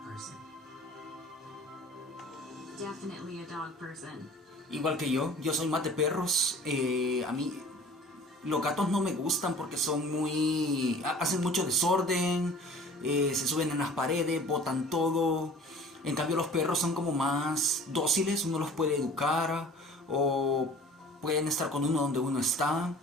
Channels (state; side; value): normal; both; correlation 0.46